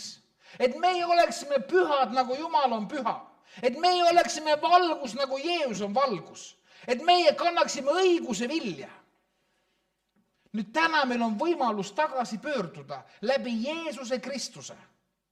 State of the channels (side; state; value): both; identical; correlation 1.00